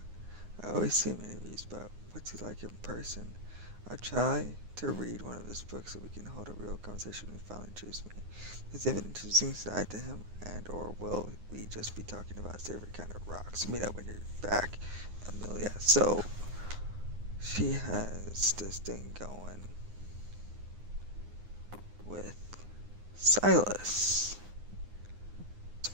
I always see him in interviews, but what's he like in person? I try to read one of his books so we can hold a real conversation when he finally chooses me. Does he have an interesting side to him, and or will we just be talking about his favorite kind of rocks? Meet up when you're back, Amelia. So, she has this thing going with Silas.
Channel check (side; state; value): left; late; 9.7 ms